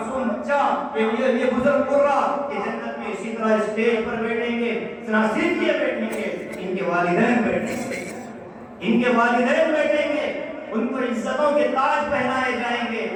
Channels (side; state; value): both; identical; correlation 1.00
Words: بچہ، یہ بزرگ قرہ کہ جنت میں اسی طرح اسٹیج پر بیٹھیں گے، نہ صرف یہ بیٹھیں گے، ان کے والدین بیٹھیں گے، ان کے والدین بیٹھیں گے، ان کو عزتوں کے تاج پہنائے جائیں گے،